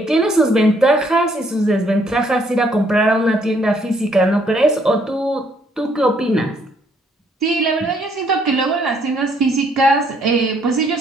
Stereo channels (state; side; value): normal; both; correlation 0.67